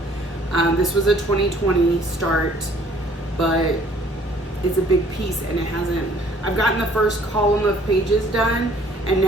This was a 2020 start, but it's a big piece and it hasn't, I've gotten the first column of pages done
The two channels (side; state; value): both; normal; correlation 0.58